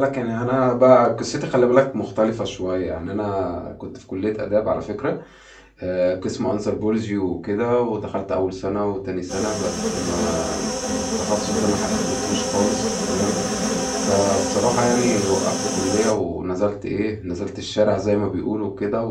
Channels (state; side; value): identical; both; correlation 1.00